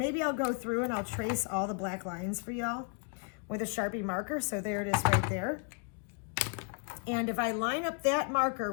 I'll go through and I'll trace all the black lines for y'all with a Sharpie marker. So there it is right there. And if I line up that marker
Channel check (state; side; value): quieter; right; 39.5 dB